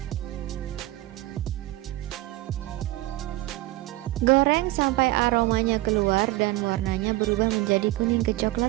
Goreng sampai aromanya keluar dan warnanya berubah menjadi kuning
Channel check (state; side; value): quieter; left; 18.0 dB